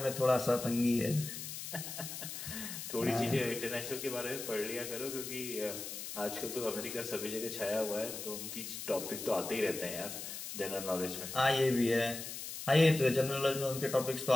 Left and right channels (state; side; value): noise; left; hiss, 8 dB below the sound